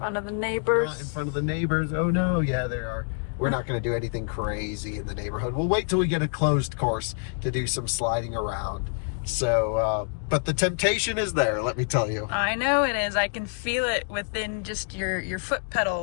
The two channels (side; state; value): right; silent; 60 dB below the other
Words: of the neighbors. In front of the neighbors. Oh no, yeah, there are. We're not going to do anything crazy in the neighborhood. We'll wait till we get a closed course to do some sliding around. So, but the temptation is there, let me tell you. I know it is. I can feel it within just your foot